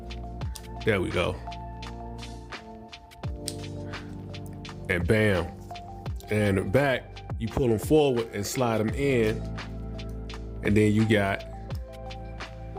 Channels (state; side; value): identical; both; correlation 1.00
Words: There we go. And bam. And the back, you pull them forward and slide them in. And then you got